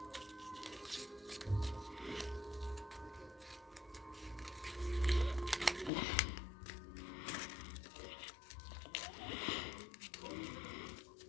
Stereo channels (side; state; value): right; drops out; at 5.9 s